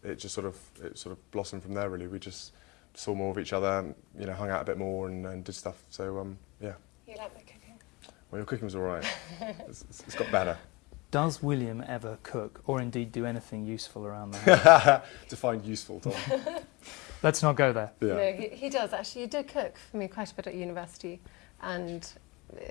it just sort of blossomed from there. Really, we just saw more of each other, hung out a bit more and did stuff. So yeah. You like my cooking? Well, your cooking was all right. It's got better. Does William ever cook, or indeed do anything useful around there? Define useful, Tom. Let's not go there. Yeah. No, he does actually. He did cook for me quite a bit at university, and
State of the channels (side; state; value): right; quieter; 24.8 dB